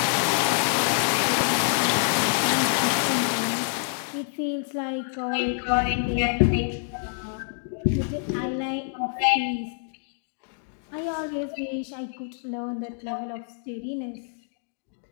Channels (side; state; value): right; silent; 61 dB below the other